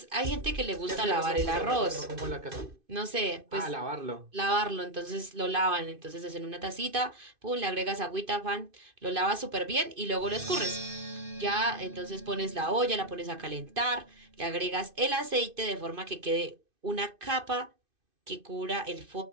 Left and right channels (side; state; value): left; late; 2.5 ms